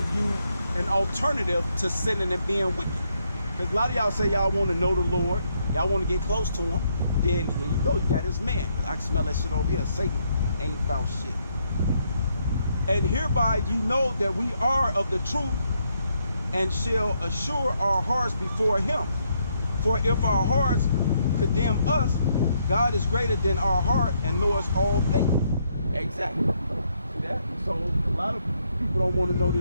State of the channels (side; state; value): both; inverted; correlation -0.75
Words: you an alternative to sinning and being wicked. Because a lot of y'all say y'all want to know the Lord, y'all want to get close to him. Then here you go, you got this man. I can smell that shit over here. Satan ain't about shit. And hereby you know that we are of the truth, and shall assure our hearts before him. For if our hearts condemn us, God is greater than our heart and knows all things. Exactly. See that? So a lot of people don't want to know